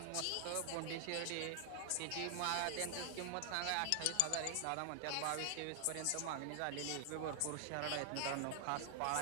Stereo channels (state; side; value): different; both; correlation 0.00